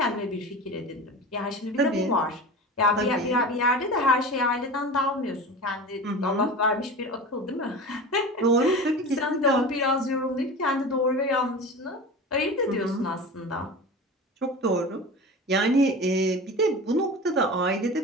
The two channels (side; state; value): both; normal; correlation 0.32